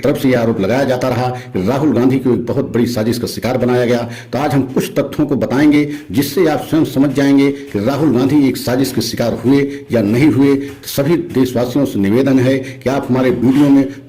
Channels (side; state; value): both; identical; correlation 1.00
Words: से यह आरोप लगाया जाता रहा कि राहुल गांधी को एक बहुत बड़ी साजिश का शिकार बनाया गया। तो आज हम कुछ तथ्यों को बताएंगे जिससे आप स्वयं समझ जाएंगे कि राहुल गांधी एक साजिश के शिकार हुए या नहीं हुए। तो सभी देशवासियों से निवेदन है कि आप हमारे वीडियो में